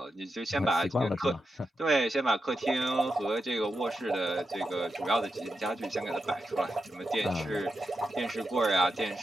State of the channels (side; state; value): both; normal; correlation 0.87